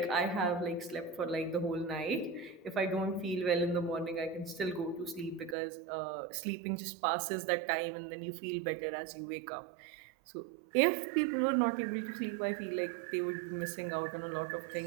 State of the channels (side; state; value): left; drops out; at 5.6 s